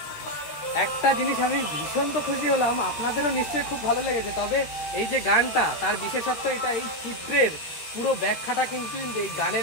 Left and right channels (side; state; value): right; late; 13 ms